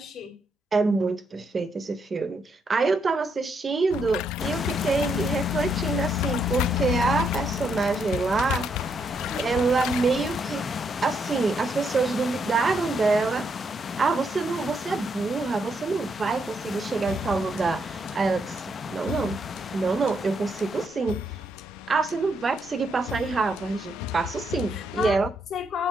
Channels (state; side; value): normal; both; correlation 0.77